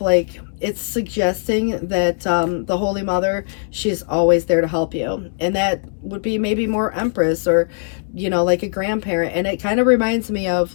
it's suggesting that the Holy Mother, she's always there to help you. And that would be maybe more Empress, or like a grandparent. And it kind of reminds me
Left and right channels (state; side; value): silent; right; digital silence